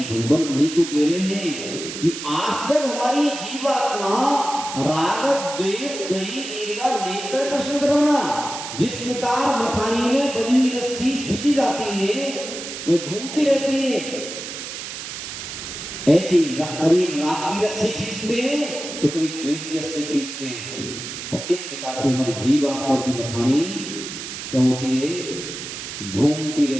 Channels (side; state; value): right; noise; hiss, 8 dB below the sound